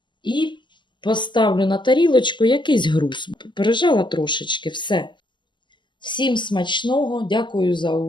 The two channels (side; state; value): right; late; 0.22 ms